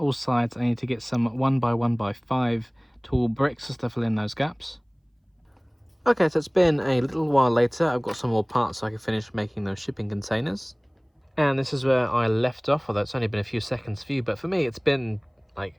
sides, I need to get some 1x1x5 tall bricks just to fill in those gaps. Okay, so it's been a little while later. I've got some more parts so I can finish making those shipping containers. And this is where I left off, although it's only been a few seconds for you, but for me it's been like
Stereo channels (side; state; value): both; identical; correlation 1.00